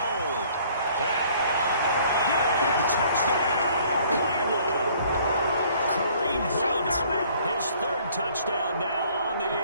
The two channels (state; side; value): inverted; both; correlation -0.58